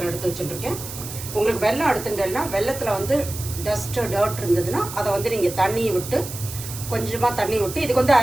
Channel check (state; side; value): noise; right; hiss, 10 dB below the sound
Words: எடுத்து வச்சுட்டுருக்கேன். உங்களுக்கு வெல்லம் எடுத்துட்டேன்னா வெள்ளத்தில் டர்ட் இருந்ததுன்னா அதை நீங்கள் தண்ணியை விட்டு, கொஞ்சமாக தண்ணி விட்டு, இதுக்கு